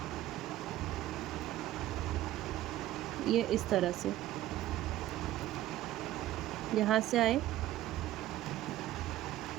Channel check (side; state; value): left; quieter; 14.4 dB